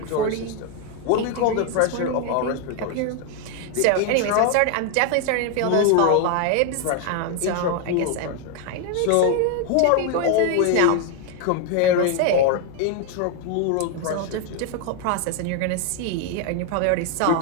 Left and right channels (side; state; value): both; different; correlation 0.01